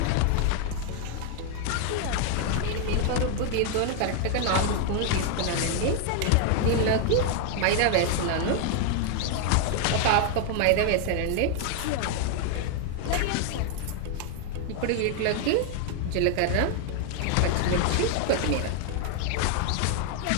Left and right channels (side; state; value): both; different; correlation 0.00